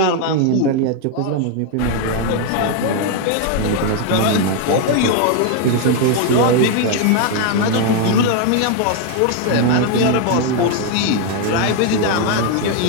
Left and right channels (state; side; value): different; both; correlation 0.01